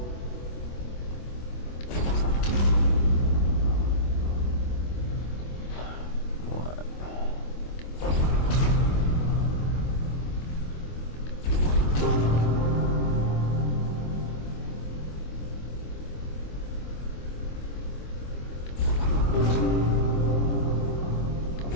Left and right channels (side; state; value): right; late; 25 ms